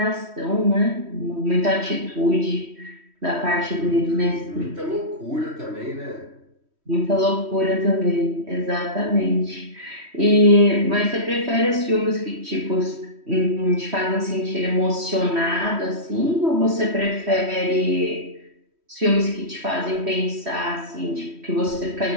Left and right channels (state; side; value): late; left; 3.1 ms